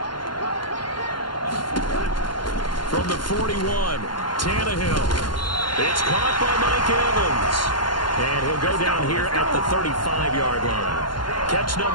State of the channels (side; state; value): right; late; 0.71 ms